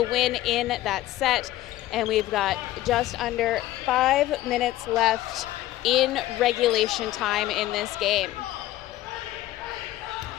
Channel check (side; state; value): right; quieter; 15.2 dB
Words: win in that set. and we've got just under 5 minutes left in regulation time in this game.